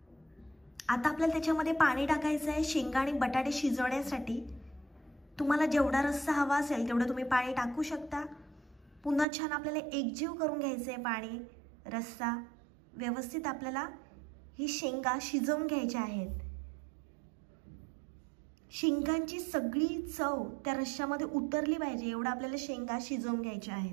आता आपल्याला त्याच्यामध्ये पाणी टाकायचं आहे शेंगा आणि बटाटे शिजवण्यासाठी। तुम्हाला जेवढा रस्सा हवा असेल तेवढं तुम्ही पाणी टाकू शकता। पुन्हा छान आपल्याला एकजीव करून घ्यायचं आहे पाणी रस्सा। व्यवस्थित आपल्याला ही शेंगा शिजवून घ्यायच्या आहेत। शेंगांची सगळी चव त्या रश्श्यामध्ये उतरली पाहिजे एवढं आपल्याला शेंगा शिजवून घ्यायच्या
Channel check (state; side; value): drops out; left; at 9.2 s